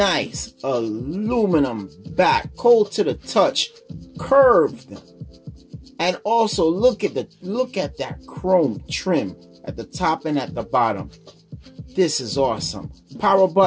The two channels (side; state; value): both; identical; correlation 1.00